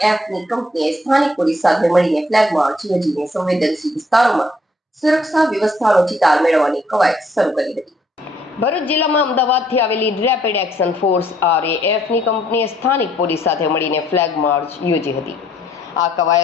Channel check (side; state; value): both; normal; correlation 0.66